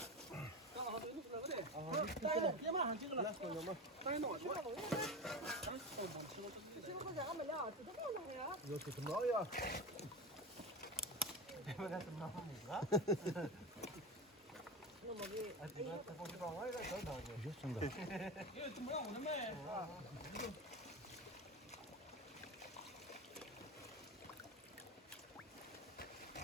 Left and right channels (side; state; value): both; normal; correlation 0.24